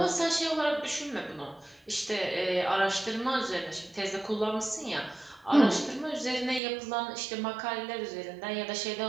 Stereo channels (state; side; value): drops out; left; at 6.6 s